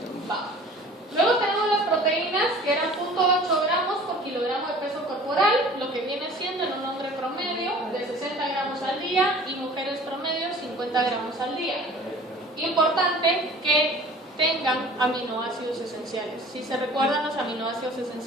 Va. Luego tenemos las proteínas, que eran 0.8 gramos por kilogramo de peso corporal, lo que viene siendo en un hombre promedio de 60 gramos al día y mujeres promedio 50 gramos al día. Importante que tengan aminoácidos esenciales. Si se recuerdan, los aminoácidos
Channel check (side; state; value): both; normal; correlation 0.46